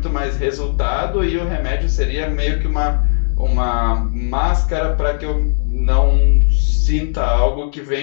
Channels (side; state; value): right; silent; digital silence